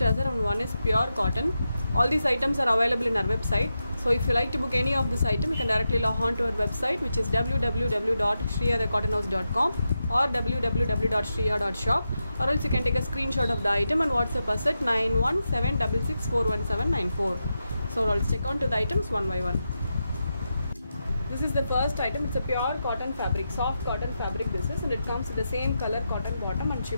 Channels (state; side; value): inverted; both; correlation -0.88